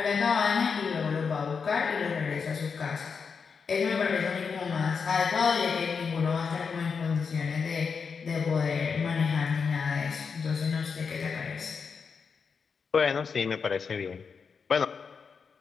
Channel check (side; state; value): right; quieter; 5.7 dB